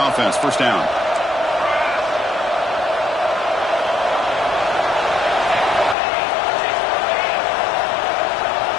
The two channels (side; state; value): right; drops out; at 6.0 s